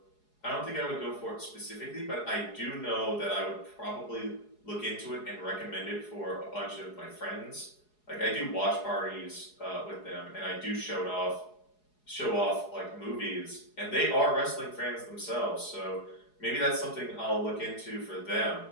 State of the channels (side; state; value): right; late; 4.8 ms